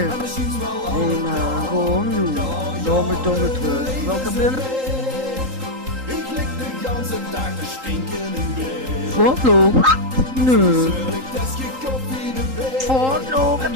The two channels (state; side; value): late; left; 3.8 ms